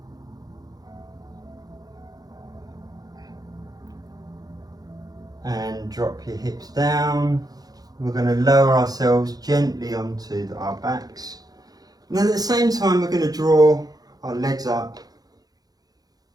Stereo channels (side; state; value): left; late; 0.19 ms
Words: And drop your hips down. We're going to lower ourselves gently onto our backs. And then at the same time we're going to draw our legs up